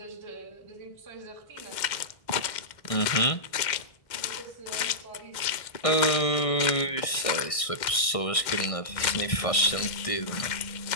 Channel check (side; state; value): right; late; 1.6 ms